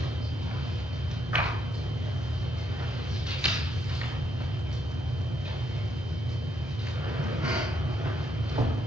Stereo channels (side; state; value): both; normal; correlation 0.75